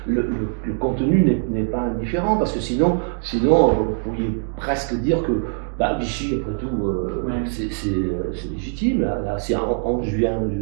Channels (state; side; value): silent; left; 64 dB below the other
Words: le contenu n'est pas indifférent, parce que sinon, vous pourriez presque dire que Vichy, après tout, c'est légitime. Là c'est en juillet